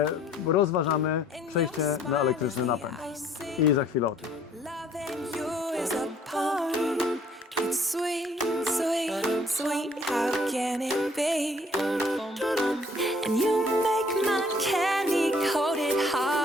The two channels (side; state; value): both; normal; correlation 0.59